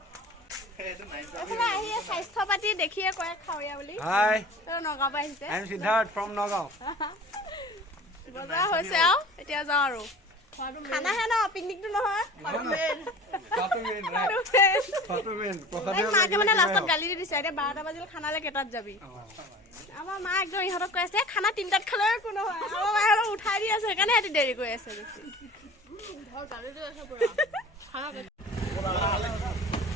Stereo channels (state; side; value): normal; both; correlation 0.41